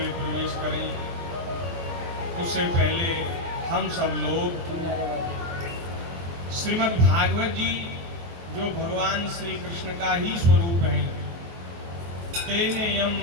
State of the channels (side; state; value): left; late; 23 ms